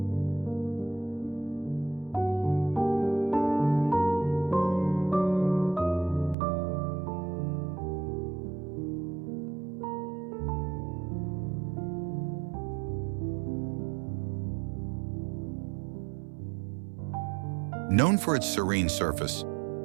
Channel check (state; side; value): drops out; left; at 6.4 s